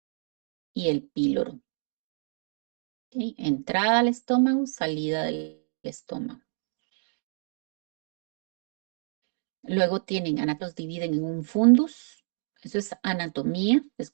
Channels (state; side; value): silent; left; digital silence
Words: y el píloro. ¿Ok? Entrada al estómago, salida del estómago. Luego tienen, los dividen en un fundus. Eso es anatomía, es